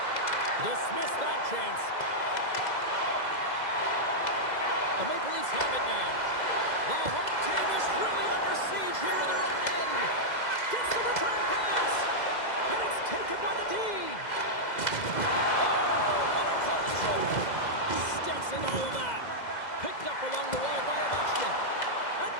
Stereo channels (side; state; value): right; late; 2.0 ms